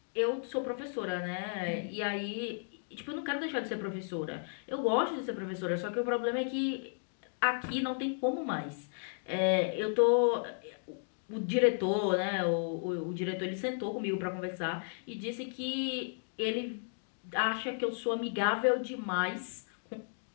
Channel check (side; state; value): right; silent; digital silence